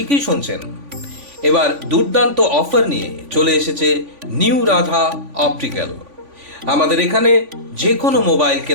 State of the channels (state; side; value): late; left; 3.5 ms